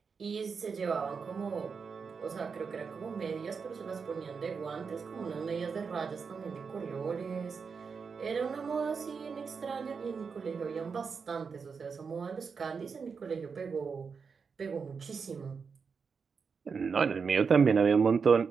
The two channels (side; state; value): left; quieter; 5.6 dB